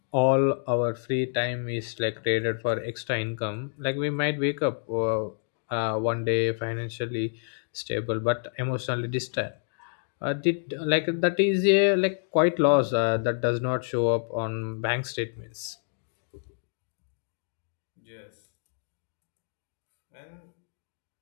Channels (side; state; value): right; silent; digital silence